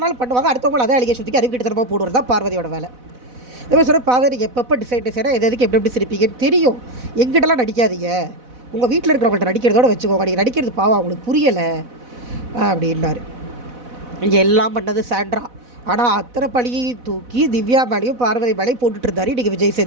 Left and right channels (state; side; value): late; left; 4.0 ms